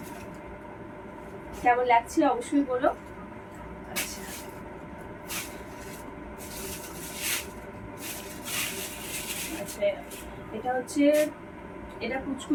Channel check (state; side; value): identical; both; correlation 1.00